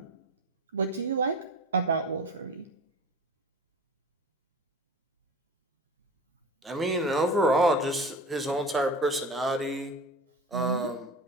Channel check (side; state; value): both; normal; correlation 0.34